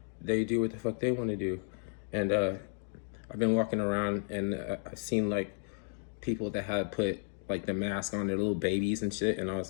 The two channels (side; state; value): right; silent; 56 dB below the other